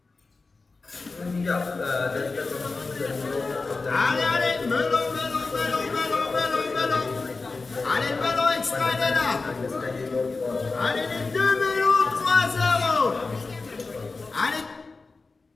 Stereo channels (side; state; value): right; quieter; 3.9 dB